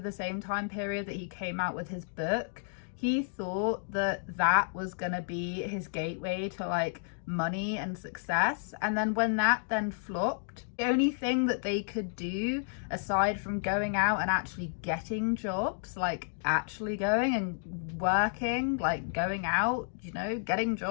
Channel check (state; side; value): silent; right; digital silence